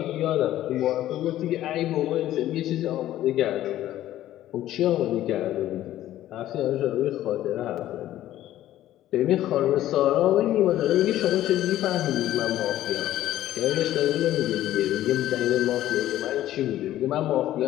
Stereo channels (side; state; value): right; quieter; 13.5 dB